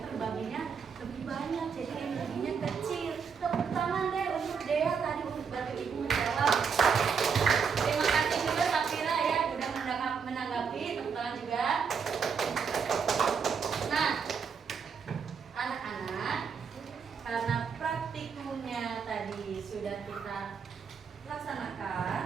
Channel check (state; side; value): quieter; left; 6.2 dB